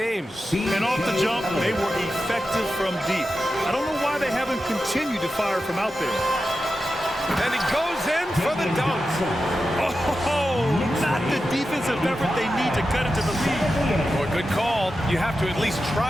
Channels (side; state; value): both; normal; correlation 0.91